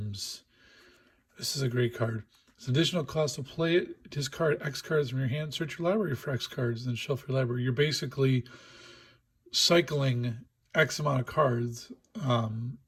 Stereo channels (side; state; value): both; identical; correlation 1.00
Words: This is a great card. It's an additional cost to play it. Discard X cards from your hand. Search your library for X cards, then shelf your library. You're basically cycling X amount of cards.